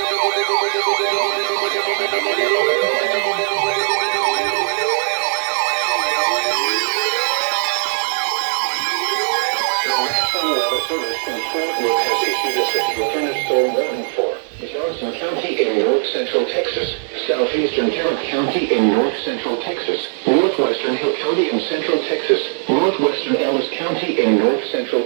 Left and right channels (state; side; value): silent; left; 67 dB below the other